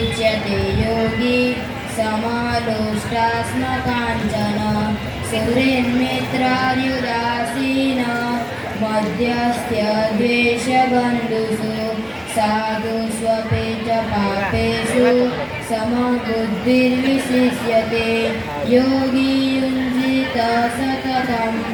योगी समालोष्टास्मकाञ्चन सुहृन्मित्रार्युदासीन मध्यस्थ्य द्वेषबन्धुषु साधुष्वपि च पापेषु समबुद्धिर्विशिष्यते योगी युञ्जित सततम्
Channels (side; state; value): both; identical; correlation 1.00